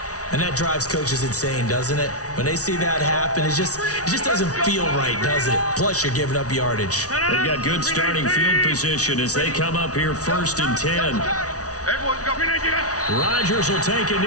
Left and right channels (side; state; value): right; late; 0.67 ms